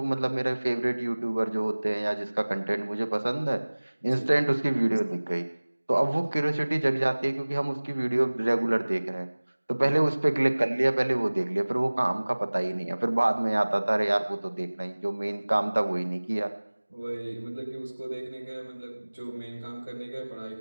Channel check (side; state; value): both; inverted; correlation -1.00